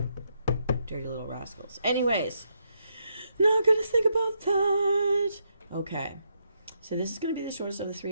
dirty little rascals. Anyways, not going to think about that. Okay, so this is going to be the shortest of the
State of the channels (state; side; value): inverted; both; correlation -0.79